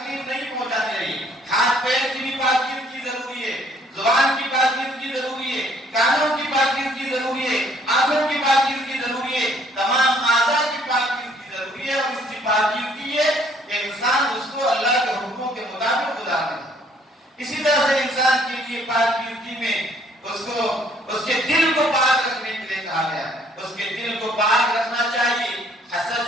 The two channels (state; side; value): normal; both; correlation 0.62